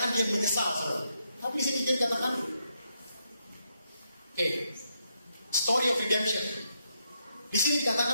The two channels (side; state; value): both; inverted; correlation -0.79